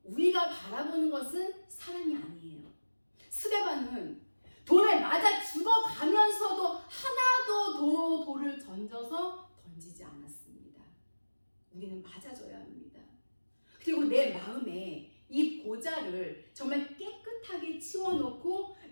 우리가 바라보는 것은 사람이 아니에요. 스데반은 돌에 맞아 죽어가면서도 하나도 돌을 던지지 않았습니다. 우리는 맞아줘야 합니다. 그리고 내 마음에 이 보좌를 정말 깨끗하게 치워놓고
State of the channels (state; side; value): inverted; both; correlation -1.00